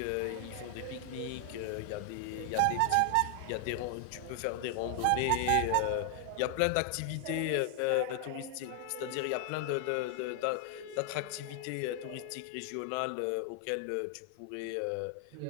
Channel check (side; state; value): both; different; correlation 0.00